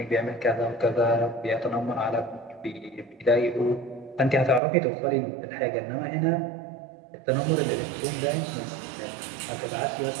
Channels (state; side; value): drops out; left; at 4.6 s